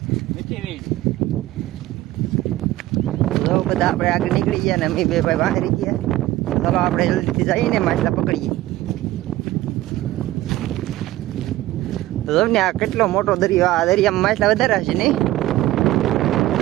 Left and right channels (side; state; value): left; quieter; 16.0 dB